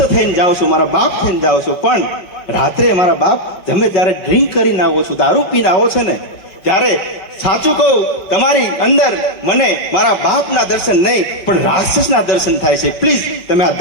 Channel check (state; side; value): late; right; 5.3 ms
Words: થઈને જાઓ છો, મારા બાપ થઈને જાઓ છો, પણ રાત્રે મારા બાપ તમે જ્યારે ડ્રિંક કરીને આવો છો, દારૂ પીને આવો છો ને, ત્યારે સાચું કહું તમારી અંદર મને મારા બાપના દર્શન નહીં પણ રાક્ષસના દર્શન થાય છે. પ્લીઝ તમે આ